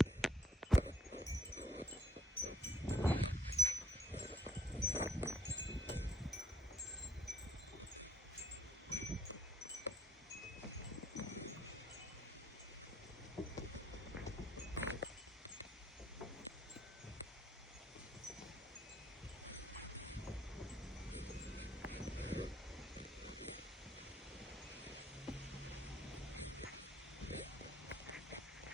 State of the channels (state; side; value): normal; both; correlation 0.69